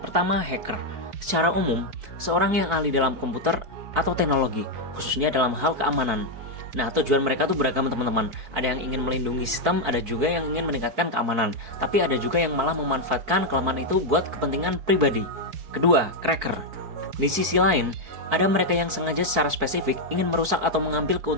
Pertama, hacker. Secara umum, seorang yang ahli dalam komputer atau teknologi, khususnya dalam hal keamanan. Nah, tujuan mereka tuh beragam teman-teman. Ada yang ingin melindungi sistem, ada juga yang ingin meningkatkan keamanan. Tapi ada juga yang malah memanfaatkan kelemahan itu buat kepentingan pribadi. Kedua, cracker. Di sisi lain, ada mereka yang sengaja secara spesifik ingin merusak atau mengambil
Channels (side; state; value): left; late; 4.6 ms